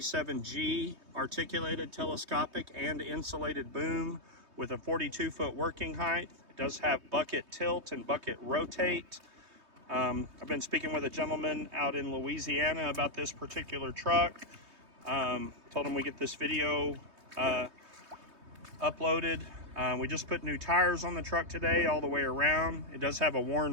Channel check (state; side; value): late; left; 3.2 ms